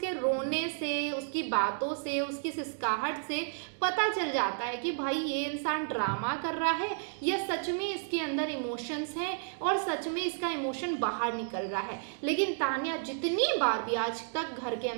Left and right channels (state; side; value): silent; left; digital silence